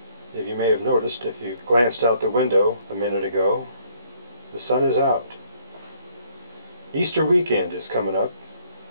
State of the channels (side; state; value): both; inverted; correlation -0.64